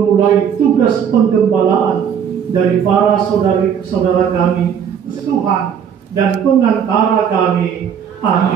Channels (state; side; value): quieter; left; 8.0 dB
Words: tugas penggembalaan dari para saudara kami, Tuhan dan pengantara kami.